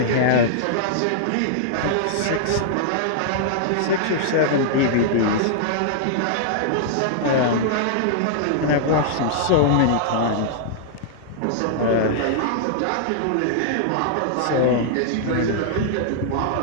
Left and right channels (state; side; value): different; both; correlation -0.01